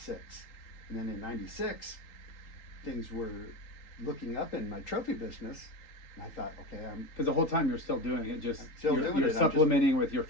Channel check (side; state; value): right; late; 3.8 ms